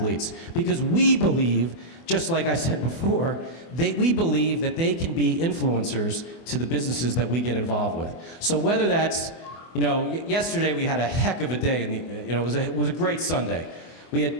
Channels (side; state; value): right; late; 24 ms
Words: Because we believe, just like I said before, we believe that they can be influencers to the businesses that we get involved with. So whether that's, yesterday we had a heck of a day, it was a great Sunday. We